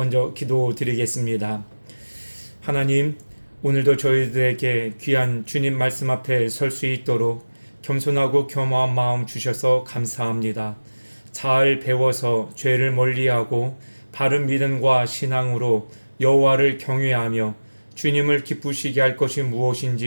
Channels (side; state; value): both; inverted; correlation -1.00